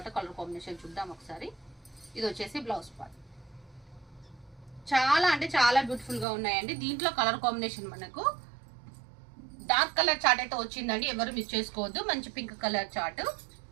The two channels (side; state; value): left; drops out; at 6.2 s